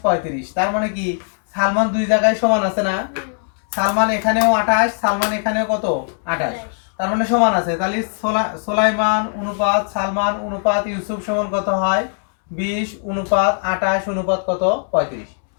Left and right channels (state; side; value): silent; right; digital silence